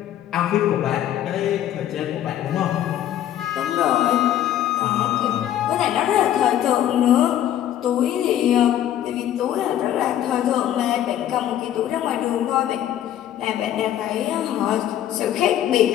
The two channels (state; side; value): quieter; right; 11.4 dB